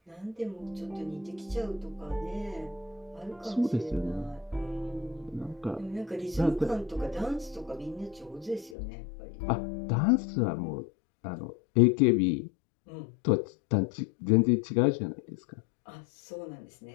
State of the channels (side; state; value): right; drops out; at 8.8 s